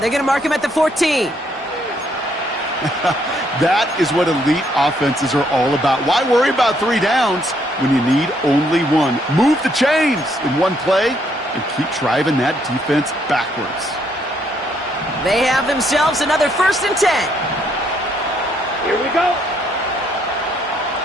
going to mark him at the 14. That is what elite offenses are all about. Why worry about 3 downs when you need only 1? Move the chains in one play and keep driving that defense backwards. They have themselves another 1st and 10. Here we go.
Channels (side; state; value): both; normal; correlation 0.71